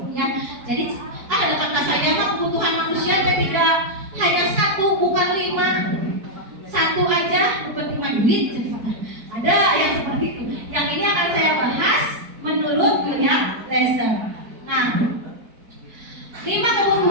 Ya, jadi ada kata saya mah kebutuhan manusia tidak hanya satu, bukan 5. Satu aja bukan 5 duit. Ada yang seperti itu. Yang ini akan saya bahas menurut William Glasser. Nah, 5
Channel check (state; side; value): late; left; 4.5 ms